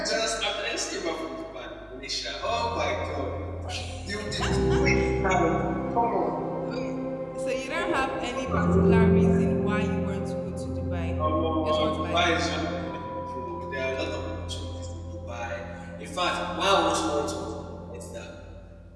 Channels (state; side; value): identical; both; correlation 1.00